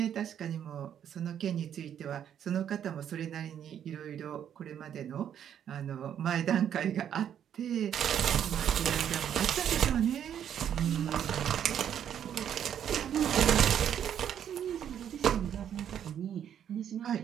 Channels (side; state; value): left; quieter; 9.4 dB